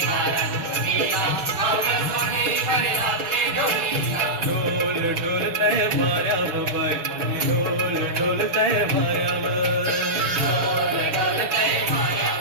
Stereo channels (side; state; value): left; late; 6.0 ms